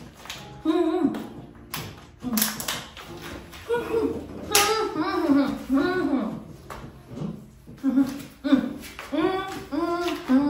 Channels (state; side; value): identical; both; correlation 1.00